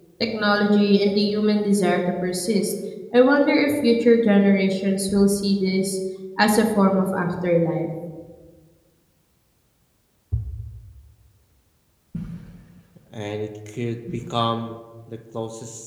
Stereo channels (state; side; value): identical; both; correlation 1.00